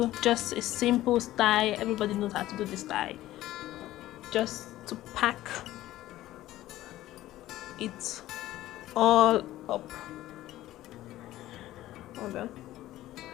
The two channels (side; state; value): right; quieter; 15.1 dB